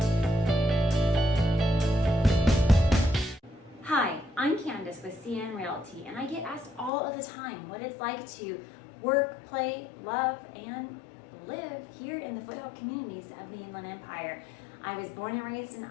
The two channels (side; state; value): right; drops out; at 6.9 s